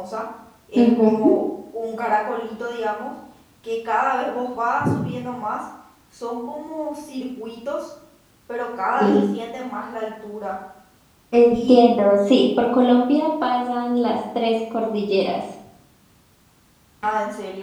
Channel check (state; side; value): identical; both; correlation 1.00